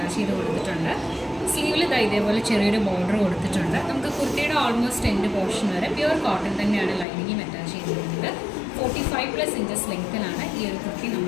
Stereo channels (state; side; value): drops out; right; at 7.1 s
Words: ചെയ്ത് കൊടുത്തിട്ടുണ്ട്. സ്ലീവിൽ ഇതേപോലെ ചെറിയൊരു ബോർഡർ കൊടുത്തിട്ടുണ്ട്. നമുക്ക് കുർത്തിയുടെ ഓൾമോസ്റ്റ് എൻഡ് പോർഷൻ വരെ പ്യുവർ കോട്ടൺ തന്നെയാണ് ലൈനിങ്ങും അറ്റാച്ച് ചെയ്തിരിക്കുന്നത്. 45+ ഇഞ്ചസ് ലെങ്ത്തിലാണ് ഈ ഒരു കുർത്തി